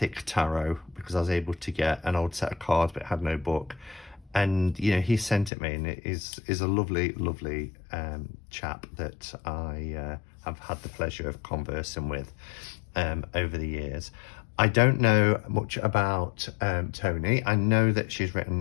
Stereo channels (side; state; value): right; drops out; at 5.5 s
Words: Tarot, because I was able to get an old set of cards but it had no book, and you know, he sent it me, and it is a lovely chap that I have had the pleasure of conversing with over the years. I don't know much about Tony. I know that she's